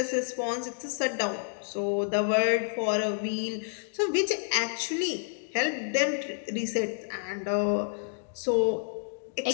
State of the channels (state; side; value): silent; right; digital silence